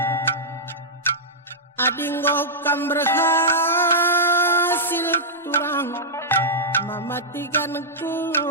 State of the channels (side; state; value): both; normal; correlation -0.10